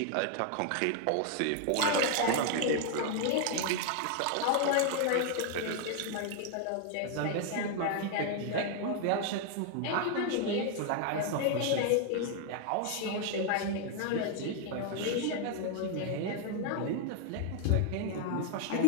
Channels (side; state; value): both; different; correlation 0.00